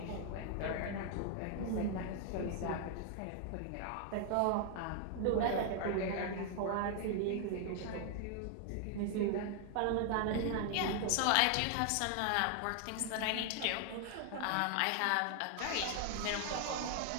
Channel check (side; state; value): both; different; correlation 0.00